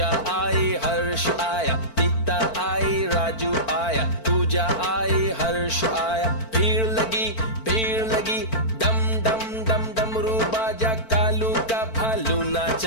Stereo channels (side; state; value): right; late; 4.5 ms